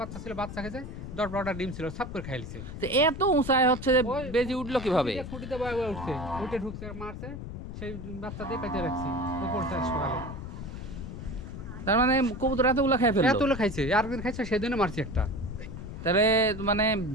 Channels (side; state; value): left; noise; rumble, 9 dB below the sound